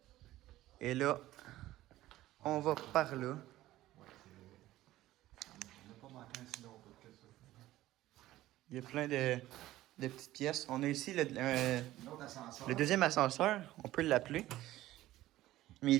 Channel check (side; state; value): left; quieter; 15.5 dB